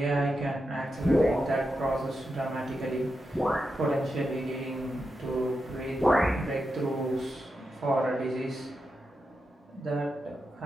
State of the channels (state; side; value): normal; both; correlation 0.88